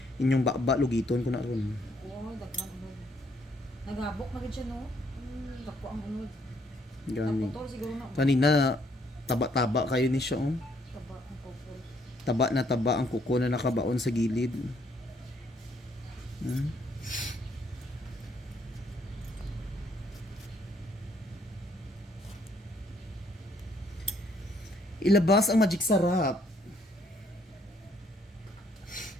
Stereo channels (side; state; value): both; normal; correlation 0.68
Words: Inyong bakba, lugiton ko na ron. Oo, daghan unod. Naghabok na gid siya no. Dako ang unod. Gani. Naputol siguro na. Kanina, taba-taba kayo ni siya, oh. Taba ang pupul. Taba na taba ang kuko na nakabaon sa gilid. Ilabas ang magic sarap.